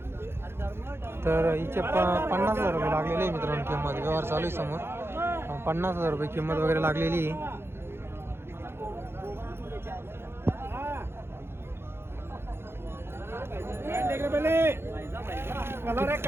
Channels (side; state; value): left; late; 0.12 ms